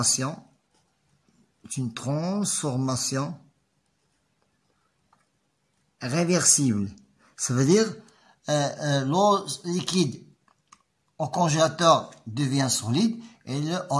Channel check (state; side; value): identical; both; correlation 1.00